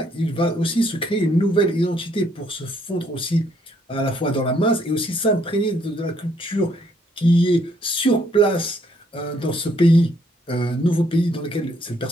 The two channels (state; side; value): normal; both; correlation 0.69